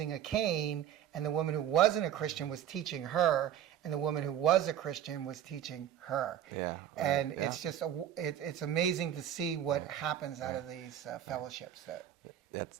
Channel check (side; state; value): left; quieter; 10.5 dB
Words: a cane, and the woman who wasn't a Christian was teaching her, and the woman who was a Christian was teaching her. And it's just it's amazing to see what happens out of these fellowships.